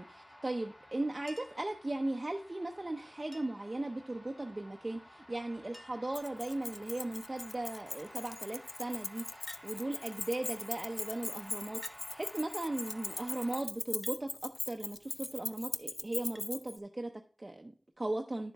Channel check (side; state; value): both; normal; correlation 0.98